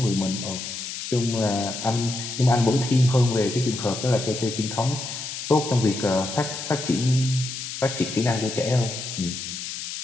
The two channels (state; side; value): noise; left; hiss, 7 dB below the sound